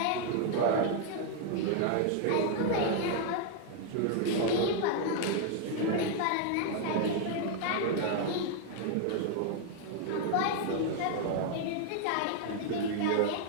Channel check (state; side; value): different; both; correlation 0.00